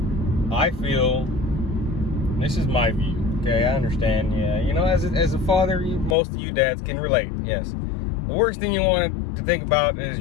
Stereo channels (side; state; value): right; drops out; at 6.2 s